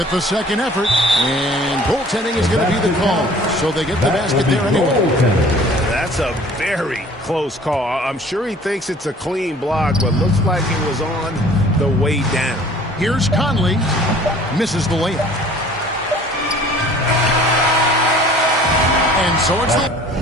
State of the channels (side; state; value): both; normal; correlation 0.50